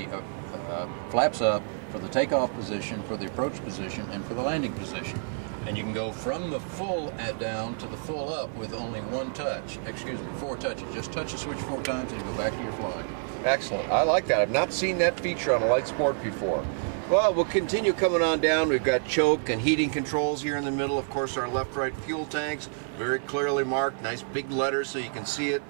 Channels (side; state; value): left; silent; 55 dB below the other